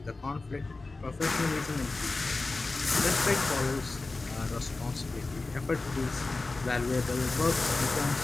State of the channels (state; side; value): quieter; right; 3.4 dB